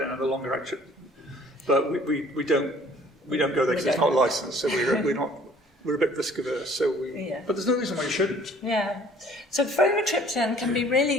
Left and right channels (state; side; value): normal; both; correlation 0.55